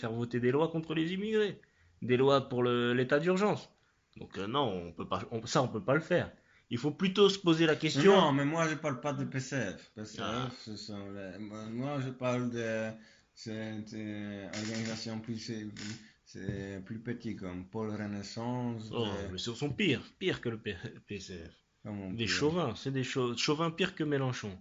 voter des lois contre les immigrés. Des lois pour l'état d'urgence. Donc, non, on peut pas, on peut pas le faire. Il faut plutôt se poser la question. Non, mais moi je parle pas de PCF. PCF, Ah, moi je parle de cette organisation c'est plus petit comme Pôle Renaissance. oh, mais ce sont pires que le PCF. Comment on Des peut- chauvins, c'est des chauvins pires que Mélenchon.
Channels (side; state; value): both; identical; correlation 1.00